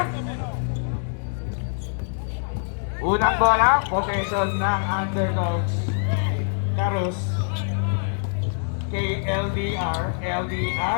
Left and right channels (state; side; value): silent; right; 62 dB below the other